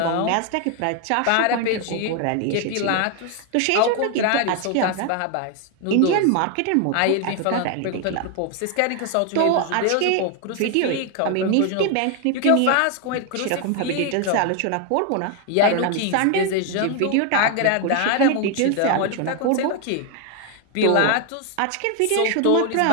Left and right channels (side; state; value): both; different; correlation 0.01